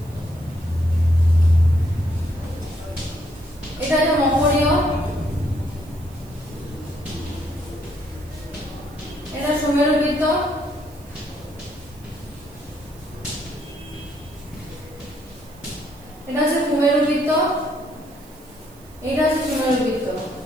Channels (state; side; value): noise; right; hiss, 25 dB below the sound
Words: এটা হচ্ছে মকরীয়, এটা সুমেরুবৃত্ত, এটা হচ্ছে কুমেরুবৃত্ত, এটা হচ্ছে সুমেরুবৃত্ত।